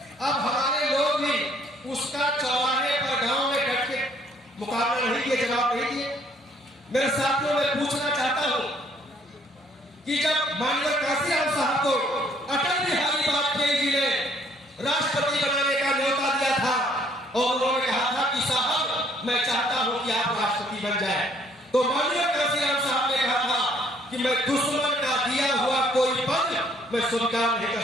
अब हमारे लोग भी उसका चौराहे पर गांव में बैठ के मुकाबला नहीं किए, जवाब नहीं दिए। मेरे साथियों मैं पूछना चाहता हूं कि जब माननीय काशीराम साहब को अटल बिहारी वाजपेयी जी ने राष्ट्रपति बनाने का न्योता दिया था और उन्होंने कहा था कि साहब मैं चाहता हूं कि आप राष्ट्रपति बन जाए, तो माननीय काशीराम साहब ने कहा था कि मैं दुश्मन का दिया हुआ कोई पद मैं स्वीकार नहीं कर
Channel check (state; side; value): normal; both; correlation 0.63